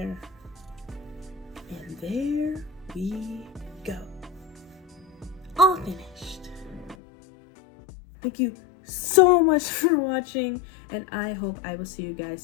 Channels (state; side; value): drops out; right; at 7.0 s